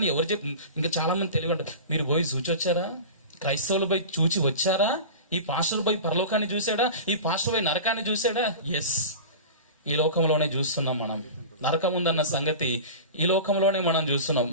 ఎవరు ఇంకా చాలా మంది తెలివి ఉంటారు. మీరు పోయి చూచి వచ్చారా? క్రైస్తవులు పోయి చూచి వచ్చారా? ఈ పాస్టర్ పోయి పరలోకాన్ని చూసాడా? ఈ పాస్టర్ పోయి నరకాన్ని చూసాడా? ఎస్, ఈ లోకంలోనే చూస్తున్నాం మనం. నరకం ఉందన్న సంగతి ఈ లోకంలోనే మనం చూస్తున్నాం.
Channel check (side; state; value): both; inverted; correlation -0.33